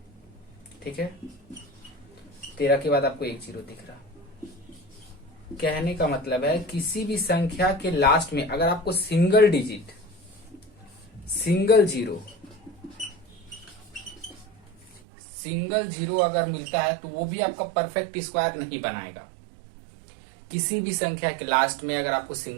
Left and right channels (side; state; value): left; drops out; at 15.0 s